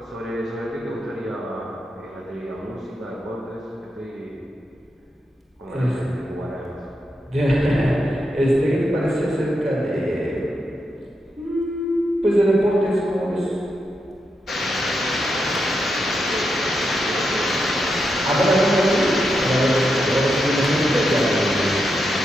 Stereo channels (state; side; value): normal; both; correlation 0.85